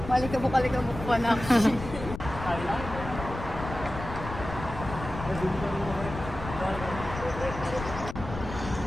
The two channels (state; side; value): noise; left; rumble, 9 dB below the sound